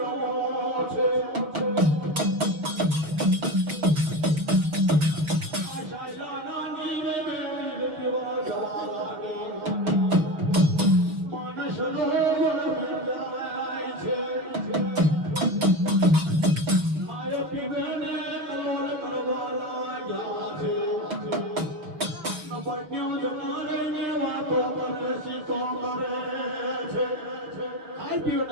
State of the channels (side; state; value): left; late; 6.3 ms